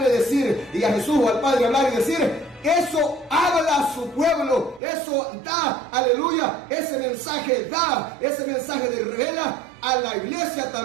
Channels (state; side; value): drops out; left; at 4.8 s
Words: decir, y a Jesús o al Padre hablar y decir, eso habla a su pueblo, eso da, aleluya, ese mensaje de revela a la iglesia